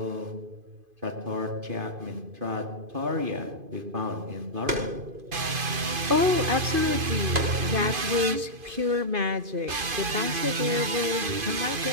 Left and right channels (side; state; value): left; late; 2.5 ms